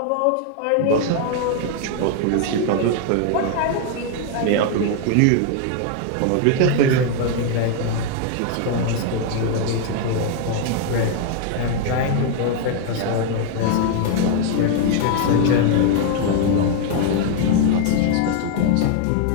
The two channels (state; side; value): different; both; correlation 0.00